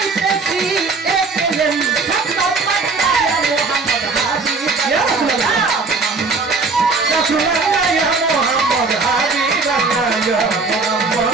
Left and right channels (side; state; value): left; quieter; 4.1 dB